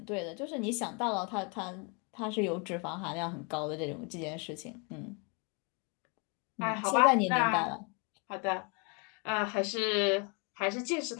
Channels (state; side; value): quieter; right; 34.1 dB